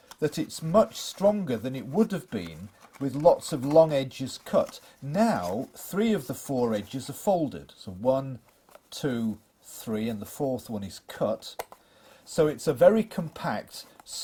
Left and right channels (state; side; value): identical; both; correlation 1.00